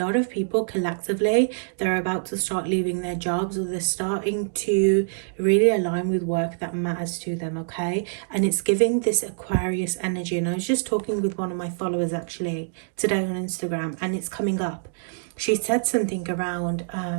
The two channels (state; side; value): silent; left; digital silence